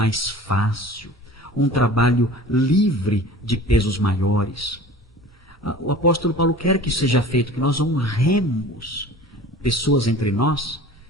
fácil, um trabalho livre de pesos maiores. O apóstolo Paulo quer que seja feito, que nós honremos pessoas entre nós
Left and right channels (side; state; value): both; normal; correlation 0.42